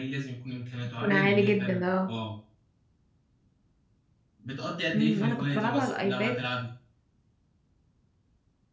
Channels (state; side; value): identical; both; correlation 1.00